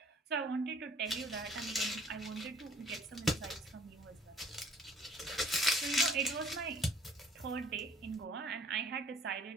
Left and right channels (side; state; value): both; normal; correlation 0.56